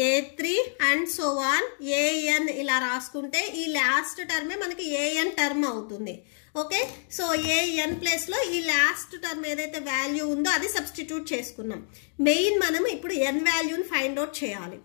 A3 and so on AN ఇలా రాసుకుంటే ఈ లాస్ట్ టర్మే మనకి ఏఎన్ టర్మ్ అవుతుంది. ఓకే, సో ఏఎన్ ప్లేస్లో ఈ లాస్ట్ టర్మ్ ఏదైతే వాల్యూ ఉందో అది సబ్స్టిట్యూట్ చేసుకున్నాం. మెయిన్ మనం ఇప్పుడు ఎన్ వాల్యూని ఫైండ్ అవుట్ చేయాలి.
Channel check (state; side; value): silent; right; digital silence